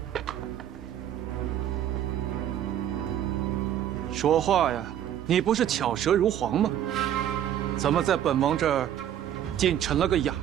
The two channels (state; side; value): quieter; left; 10.7 dB